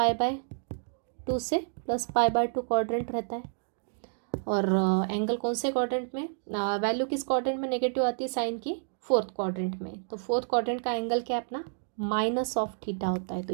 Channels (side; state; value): left; silent; digital silence